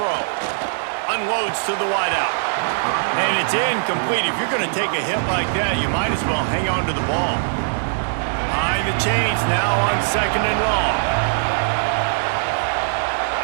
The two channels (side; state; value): left; silent; 65 dB below the other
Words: Unloads to the wideout. And it's incomplete. If you're going to take a hit like that, you might as well hang on to the ball. Behind the chains now on 2nd and long.